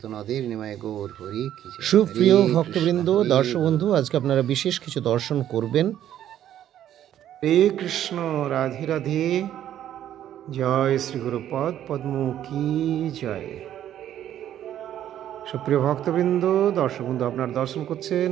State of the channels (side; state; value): left; quieter; 11.2 dB